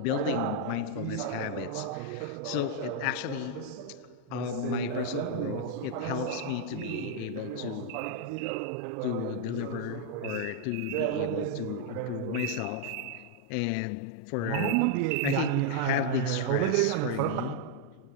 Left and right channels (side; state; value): both; different; correlation 0.00